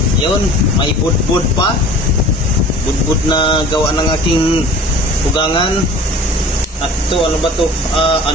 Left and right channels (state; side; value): normal; both; correlation 0.44